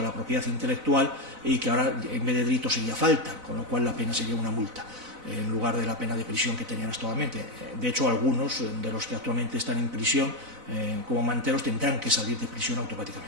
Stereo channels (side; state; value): left; late; 4.0 ms